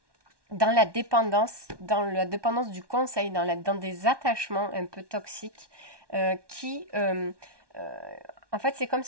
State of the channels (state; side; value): late; left; 1.2 ms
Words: la dépendance du conseil, dans des attachements un peu toxiques qui en fait, c'est comme